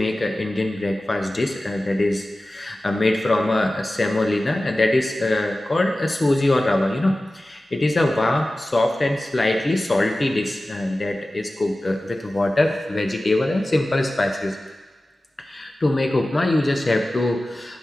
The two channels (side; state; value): both; normal; correlation 0.96